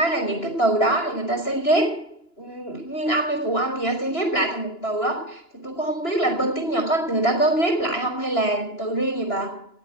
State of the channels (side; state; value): right; late; 2.9 ms